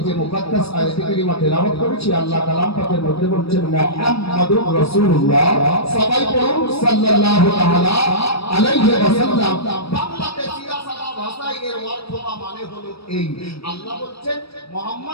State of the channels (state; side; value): late; right; 0.77 ms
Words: যে মুকদ্দাস আয়াতে কারিমা তেলাওয়াত করেছি, আল্লাহ কালাম পাকের মধ্যে বলছেন মুহাম্মাদুর রাসূলুল্লাহ, সবাই পড়ুন সাল্লাল্লাহু তাআলা আলাইহি ওয়াসাল্লাম। বাংলাতে সিরা সাদা ভাষায় এর অর্থ বা মানে হলো এই, আল্লাহ বলছেন